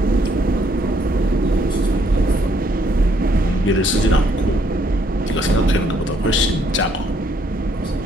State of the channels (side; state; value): both; normal; correlation 0.69